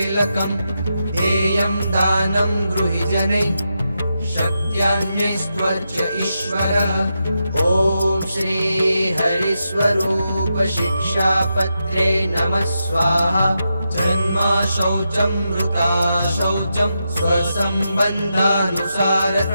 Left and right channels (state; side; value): inverted; both; correlation -0.86